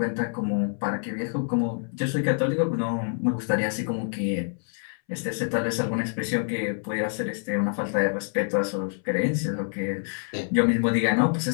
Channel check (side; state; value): right; silent; 61 dB below the other